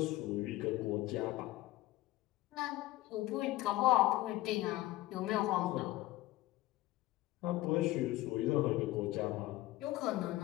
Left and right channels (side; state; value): right; quieter; 17.3 dB